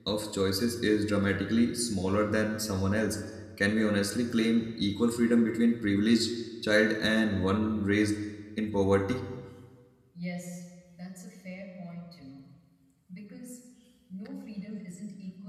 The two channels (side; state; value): both; identical; correlation 1.00